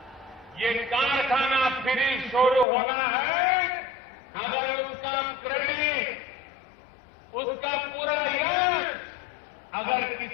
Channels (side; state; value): right; drops out; at 2.7 s